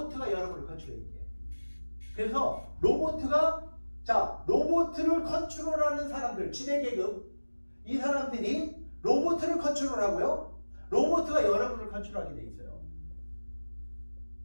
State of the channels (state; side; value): inverted; both; correlation -1.00